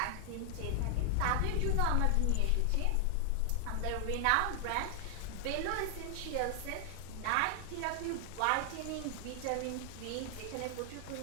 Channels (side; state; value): both; different; correlation 0.00